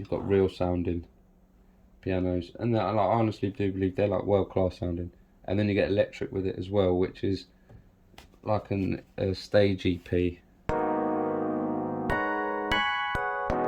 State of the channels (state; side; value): identical; both; correlation 1.00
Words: got real sounding pianos, and I honestly do believe they're like world class sounding. And then you get electric with it as well, which is like a stage EP.